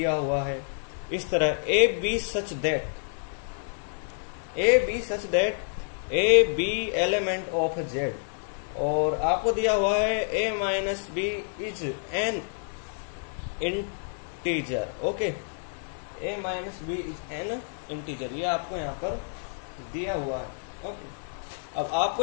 हुआ है इस तरह, A B such that A B element of Z, और आपको दिया हुआ है A minus B is an integer, okay, A minus B is an integer, ये आपको यहाँ पर दिया हुआ है, ओके। अब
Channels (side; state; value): right; silent; digital silence